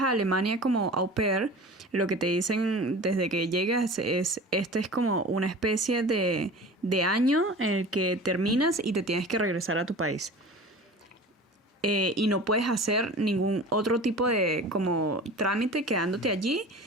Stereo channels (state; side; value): normal; both; correlation 0.38